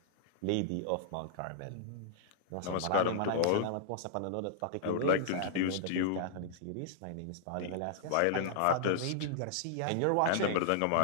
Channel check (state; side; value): different; both; correlation -0.01